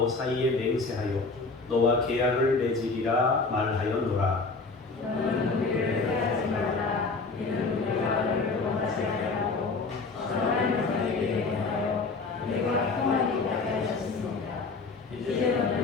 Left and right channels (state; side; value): quieter; right; 4.0 dB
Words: 사이에 맹세하여 너와 계약을 맺으리라 말하였노라. 너는 우리를 해하지 말라. 이는 우리가 너를 원하지 아니하고 선한 너에게 대하여 우리가 평안히 있게 하셨습니다. 이제